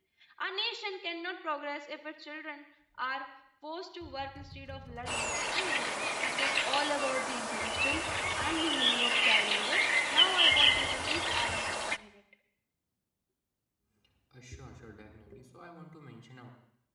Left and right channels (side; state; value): both; identical; correlation 1.00